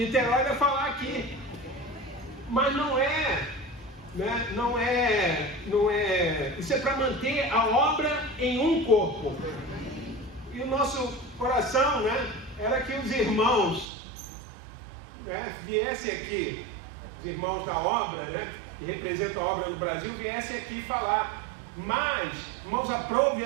vai falar aqui, mas não é, né? Não é. Isso é para manter a obra em um corpo. E o nosso coração, né, era que os irmãos, né, viessem aqui, os irmãos da obra, né, que representam a obra do Brasil, viessem aqui falar. Mas, irmãos, aprove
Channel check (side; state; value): left; drops out; at 13.9 s